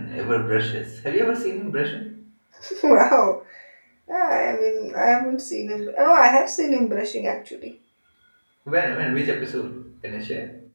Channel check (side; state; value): both; inverted; correlation -1.00